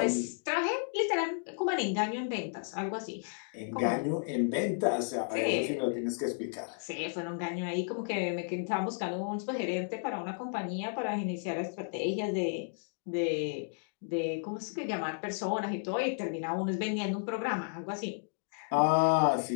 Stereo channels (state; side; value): silent; right; digital silence